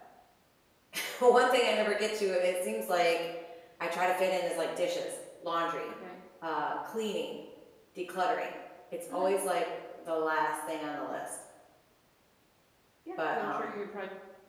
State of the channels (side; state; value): both; identical; correlation 1.00